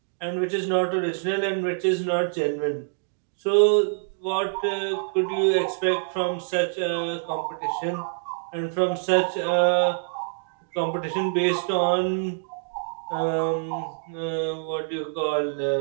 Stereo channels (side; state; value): left; silent; digital silence